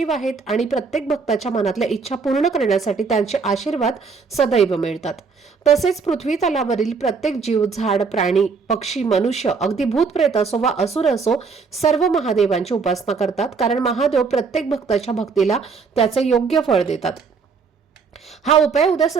आहेत आणि प्रत्येक भक्ताच्या मनातल्या इच्छा पूर्ण करण्यासाठी त्यांचे आशीर्वाद सदैव मिळतात. तसेच पृथ्वी तलावरील प्रत्येक जीव, झाड, प्राणी, पक्षी, मनुष्य, अगदी भूत प्रेत असो वा असुर असो, सर्व महादेवांची उपासना करतात. कारण महादेव प्रत्येक भक्ताच्या भक्तीला त्याचे योग्य फळ देतात. हा उपाय उद्या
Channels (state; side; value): quieter; left; 5.1 dB